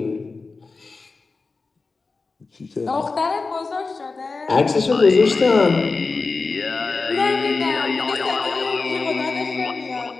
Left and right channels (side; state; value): right; quieter; 4.0 dB